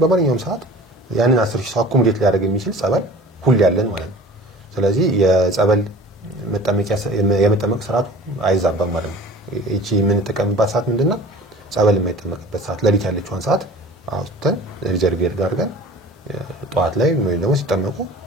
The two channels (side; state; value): both; normal; correlation 0.43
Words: በማንኛውም ሰዓት ያንን 10000 ሰው አኩሙሌት ሊያደርግ የሚችል ጸበል ሁሉ ያለን ማለት ነው ስለዚህ የጸበል የመጠመቅ ስርዓቱ አይዛባም ማለት ነው እቺ ምን ተቀምባት ሰዓት ምንድነው ጸበል የማይጠመቅበት ሰዓት ለሊት ያለችውን ሰዓት አውጥተን ሪዘርቨር ጋር አድርገን ጧት ላይ ወይ ደግሞ ሲጠመቁ